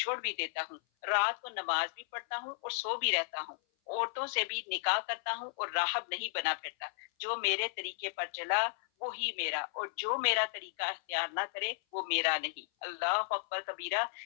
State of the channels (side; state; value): right; silent; 55 dB below the other